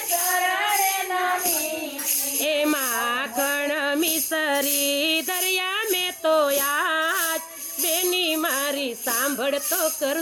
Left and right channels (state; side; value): identical; both; correlation 1.00